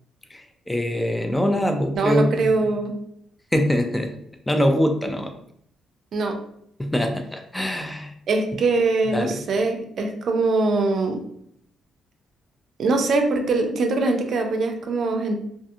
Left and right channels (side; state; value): both; normal; correlation 0.81